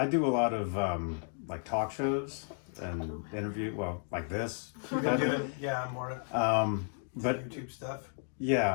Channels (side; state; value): right; silent; 56 dB below the other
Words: do a lot of like talk shows and interview. Well, like this. You've been doing more but YouTube stuff.